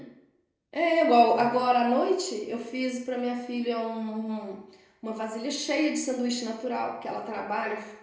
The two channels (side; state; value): both; identical; correlation 1.00